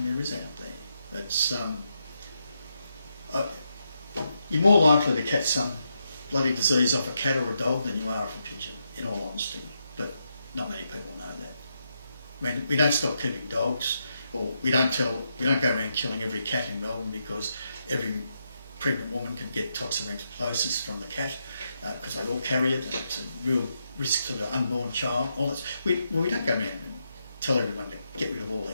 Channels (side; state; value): both; inverted; correlation -0.83